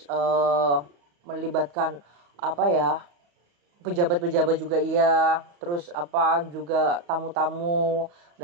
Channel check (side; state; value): left; late; 35 ms